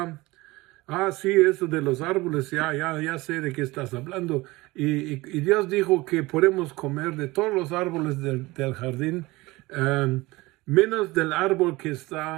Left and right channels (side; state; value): left; quieter; 21.1 dB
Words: sí, eso de los árboles, ya sé de qué estás hablando. Y Dios dijo que podemos comer de todos los árboles del jardín, menos del árbol que